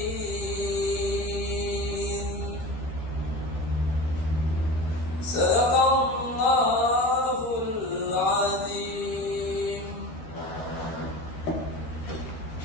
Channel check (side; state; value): right; late; 13 ms